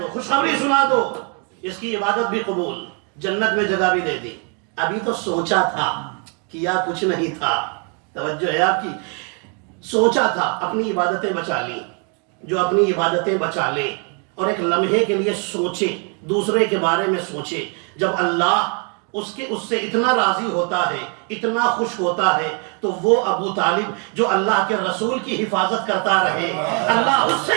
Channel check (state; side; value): quieter; left; 37.7 dB